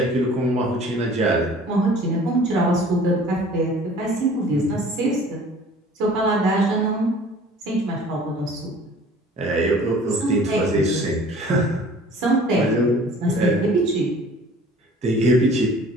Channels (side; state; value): both; normal; correlation 0.48